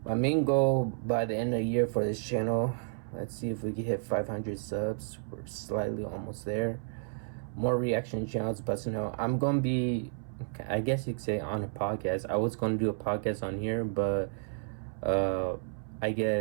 My main goal by the end of the year for this channel, let's see if we can hit 500 subs. We're slightly almost there. More reaction channels, but I'm going to be, I guess you could say, on a podcast. I was going to do a podcast on here, but I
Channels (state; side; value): silent; left; 57 dB below the other